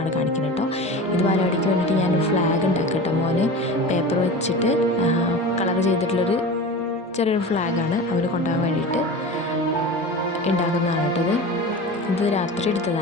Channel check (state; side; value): normal; both; correlation 0.32